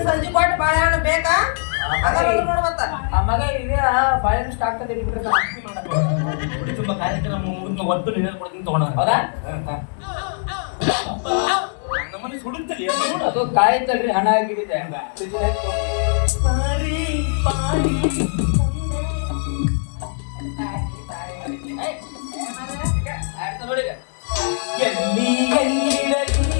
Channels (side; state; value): right; silent; 65 dB below the other